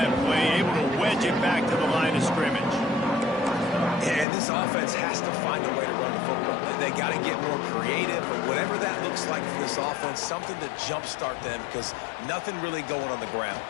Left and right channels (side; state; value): right; drops out; at 4.2 s